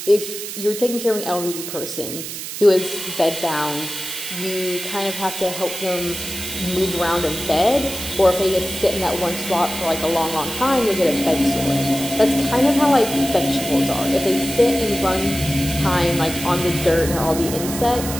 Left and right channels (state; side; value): noise; right; hiss, 8 dB below the sound